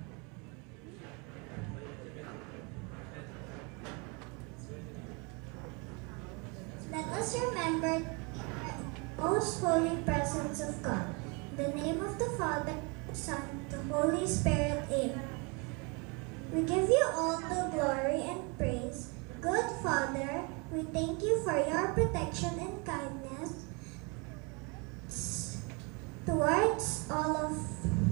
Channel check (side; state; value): left; quieter; 31.1 dB